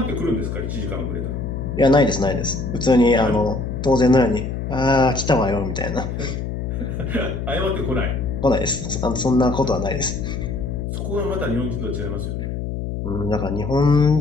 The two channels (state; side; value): noise; left; hum, 4 dB below the sound